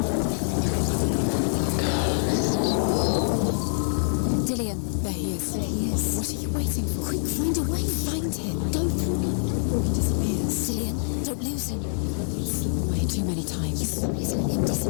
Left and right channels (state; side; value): silent; right; 59 dB below the other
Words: Dillion. There he is. There he is. What are you waiting for? Quick, find a way. Find him. Go. Before he disappears. Dillion, don't lose him. Slip away too many times. Please let him